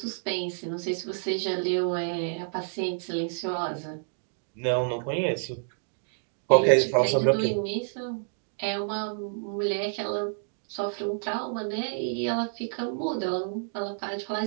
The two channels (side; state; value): left; silent; digital silence